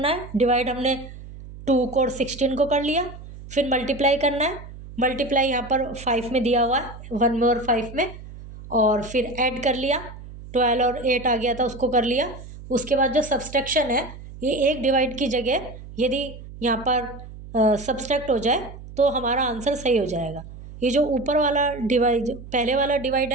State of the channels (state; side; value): noise; right; hum, 15 dB below the sound